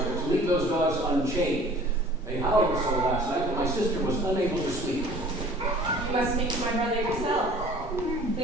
to leave those dogs unchained? They howled so last night that my sister was unable to sleep. You must speak to my brother yourself.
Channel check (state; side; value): normal; both; correlation 0.49